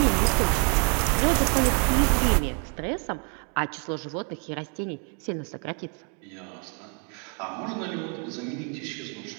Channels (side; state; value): left; quieter; 36.2 dB